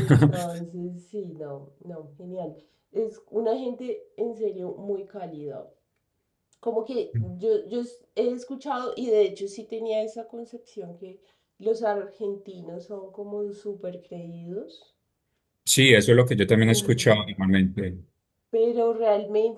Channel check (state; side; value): identical; both; correlation 1.00